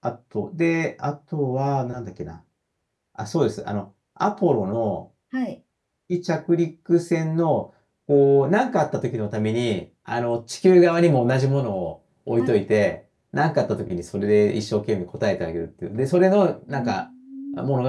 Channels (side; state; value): both; identical; correlation 1.00